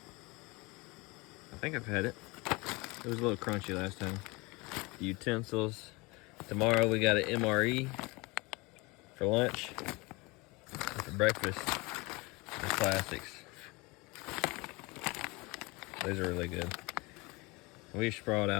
I think I've had it. It was a little crunchy last time. The utensils. Tomorrow we got an MRE for lunch. And for breakfast, the classics. Those are really good. We sprawled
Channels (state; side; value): quieter; right; 25.3 dB